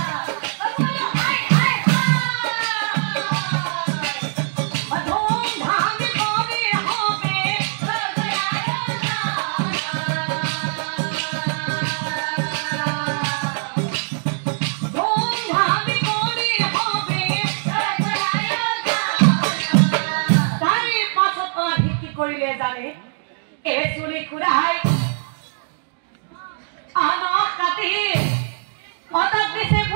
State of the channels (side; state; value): left; silent; digital silence